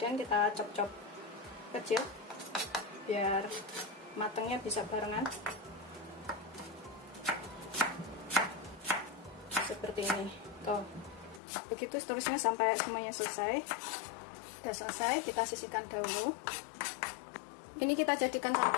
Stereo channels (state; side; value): drops out; right; at 11.4 s